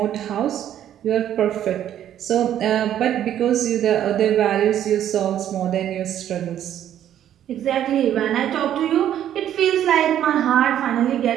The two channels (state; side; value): quieter; left; 10.9 dB